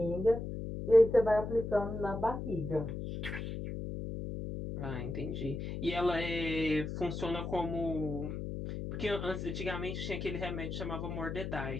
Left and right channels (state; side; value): noise; left; hum, 5 dB below the sound